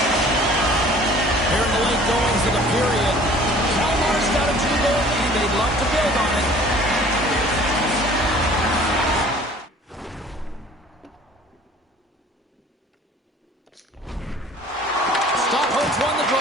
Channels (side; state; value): both; normal; correlation 0.50